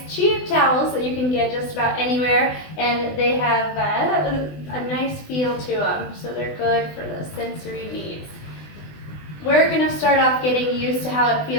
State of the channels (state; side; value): late; right; 20 ms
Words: cheap towels that you can get just about anywhere, and they have a nice feel to them, so they're good for the sensory needs. We're going to start off getting used to how it